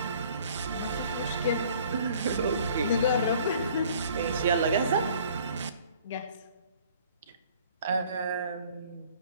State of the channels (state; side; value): inverted; both; correlation -0.54